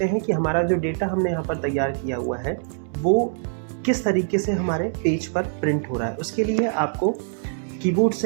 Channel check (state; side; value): silent; left; digital silence